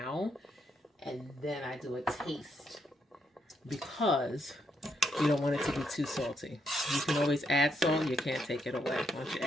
and then I do a taste because you don't want it to be too salty. You can always add salt. You can't take it away once you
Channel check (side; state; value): both; normal; correlation 0.77